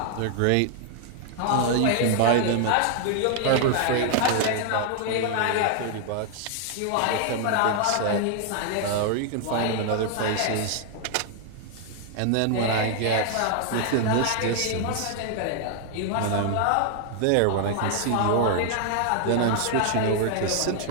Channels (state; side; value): different; both; correlation 0.00